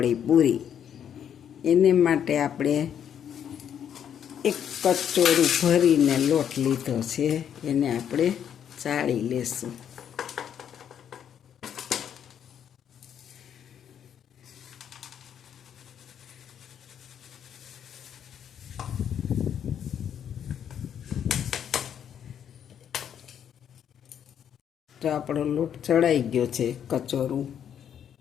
પૂરી. એને માટે આપણે એક કચોરું ભરીને લોટ લીધો છે, એને આપણે ચાળી લેશું. તો આપણો લોટ ચડાઈ ગયો છે કચોરું,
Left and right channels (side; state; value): right; quieter; 8.9 dB